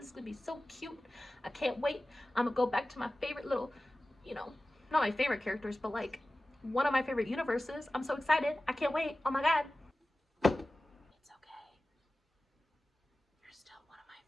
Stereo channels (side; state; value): both; normal; correlation 0.96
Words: is gonna be so cute. I can't wait. I'm gonna go back to my favorite little, you know, not my favorite characters, but like one of my favorite universes. I'm so excited. I can't wait. Oh my God. It's okay. You're still one of my